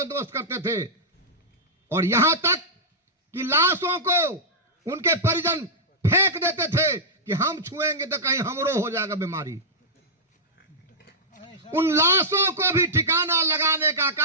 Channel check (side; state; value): both; normal; correlation -0.12